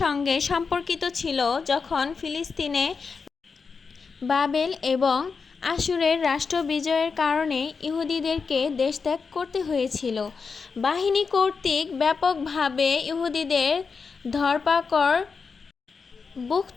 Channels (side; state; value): right; quieter; 5.2 dB